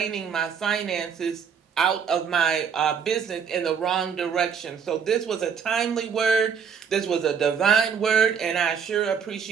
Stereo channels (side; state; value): left; quieter; 6.8 dB